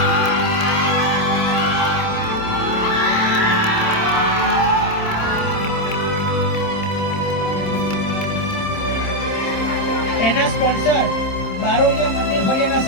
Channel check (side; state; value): right; late; 26 ms